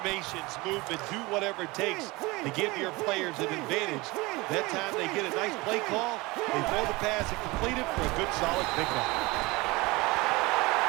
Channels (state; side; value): quieter; left; 23.0 dB